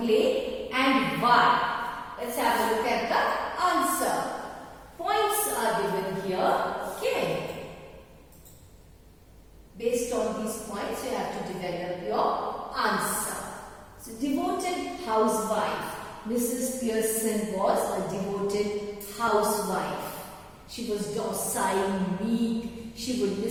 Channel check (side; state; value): both; identical; correlation 1.00